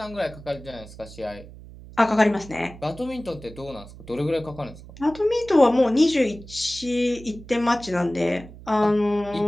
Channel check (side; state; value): right; noise; hum, 17 dB below the sound